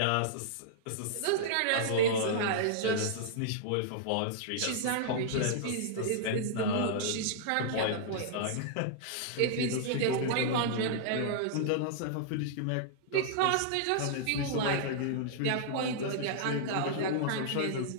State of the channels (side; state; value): both; different; correlation -0.01